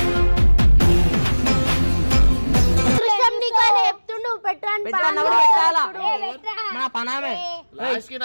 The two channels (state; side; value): inverted; both; correlation -1.00